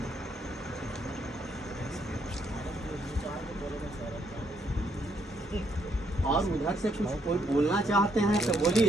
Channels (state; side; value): normal; both; correlation 0.73